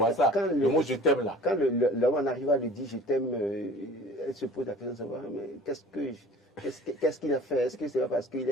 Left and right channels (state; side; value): normal; both; correlation 0.46